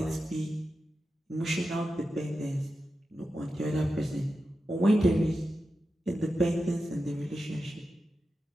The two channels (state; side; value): normal; both; correlation 0.91